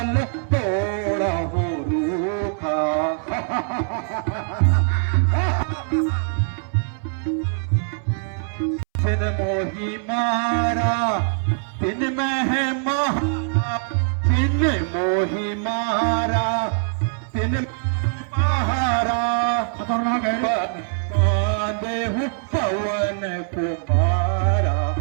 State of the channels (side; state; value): left; silent; 64 dB below the other